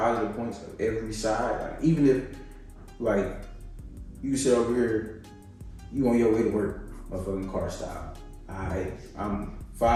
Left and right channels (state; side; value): identical; both; correlation 1.00